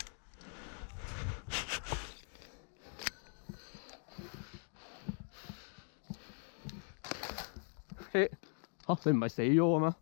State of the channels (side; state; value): right; silent; 51 dB below the other